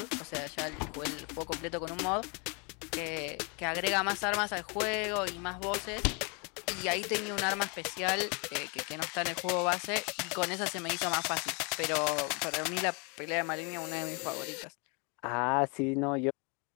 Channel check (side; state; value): right; quieter; 33.9 dB